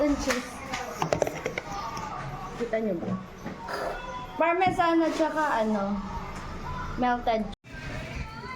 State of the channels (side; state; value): both; identical; correlation 1.00